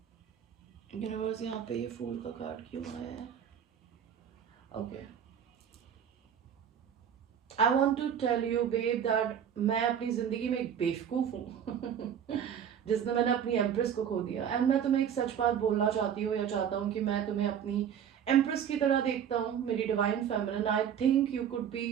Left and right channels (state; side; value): quieter; left; 8.6 dB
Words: यूनिवर्स, यहाँ पे ये फूल का कार्ड क्यों आया है? Okay. I want to tell you babe that मैं अपनी जिंदगी में एक बेवकूफ हूँ जिसने मैंने अपनी एम्प्रेस को खो दिया. एंड मैं तुम्हें एक सच बात बोलना चाहती हूँ या चाहता हूँ कि मैं तुम्हें अपनी एम्प्रेस की तरह देखता हूँ, मेरी divine feminine. I think you could be,